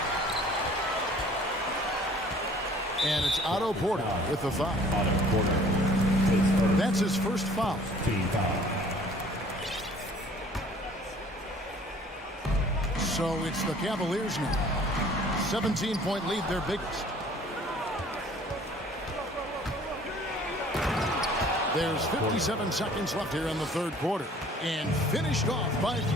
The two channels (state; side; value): normal; both; correlation 0.53